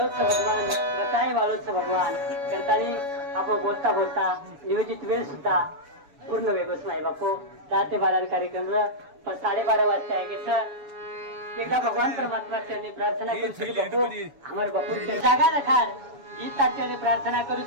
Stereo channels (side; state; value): left; late; 7.1 ms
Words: भगवान बताए वाळूच भगवान करताना आपण बोलता बोलता नियोजित वेळ सुद्धा पूर्ण वेगळंच नाही बापू 10 ते 12 कार्यक्रम 12:30 वाजता आहे की सर एकदा भगवान परमात्मा चरणी प्रार्थना करू बापू हमारे बापू जागा रखार ही तात्याने प्रार्थना